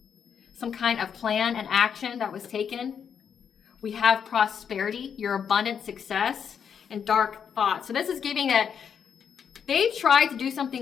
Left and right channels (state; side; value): quieter; right; 7.4 dB